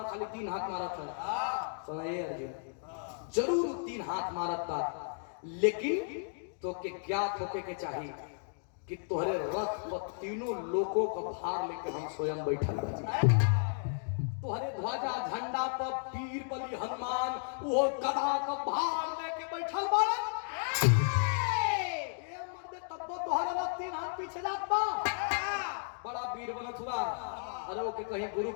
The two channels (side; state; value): right; silent; digital silence